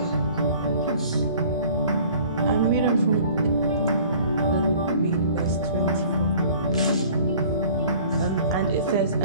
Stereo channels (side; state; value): both; inverted; correlation -0.49